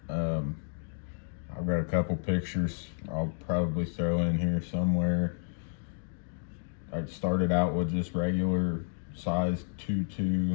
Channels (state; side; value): silent; right; digital silence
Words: I've got a couple pictures I'll probably throw in here somewhere. I started out with just regular size